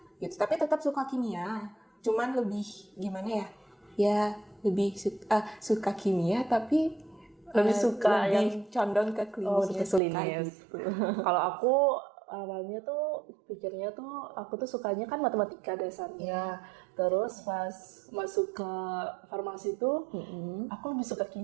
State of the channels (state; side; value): drops out; left; at 10.0 s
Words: Gitu. Tapi tetap suka kimia, cuman lebih gimana ya lebih suka kimia tapi lebih suka lebih condong ke klinisnya. Gitu. Kalau aku awalnya tuh pikirnya tuh aku tuh sukanya kan matematika dasarnya. Terus pas masuk ke farmasi tuh aku lebih suka